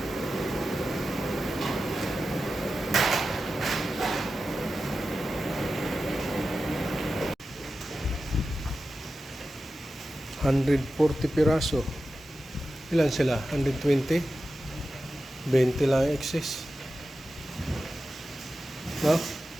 $140 piraso. Ilan sila? 120? 20 lang excess. No?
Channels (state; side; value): normal; both; correlation 0.93